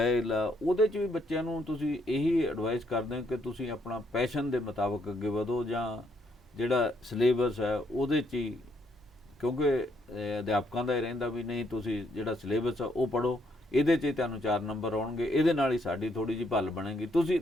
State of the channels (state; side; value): normal; both; correlation 0.73